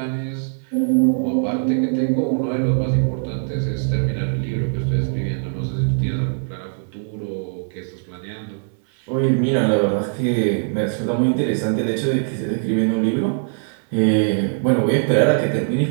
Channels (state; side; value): silent; left; 65 dB below the other